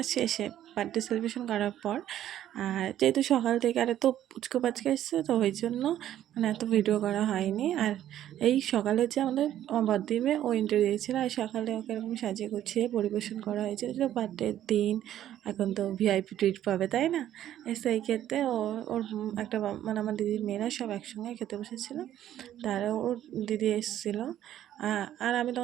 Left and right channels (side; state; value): left; quieter; 11.8 dB